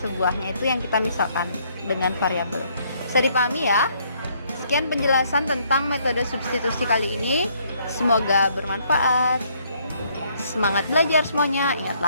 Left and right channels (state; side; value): inverted; both; correlation -0.67